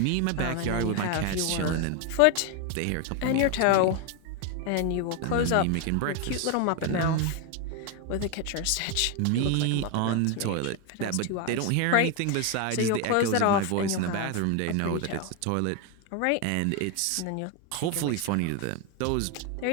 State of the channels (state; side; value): different; both; correlation 0.01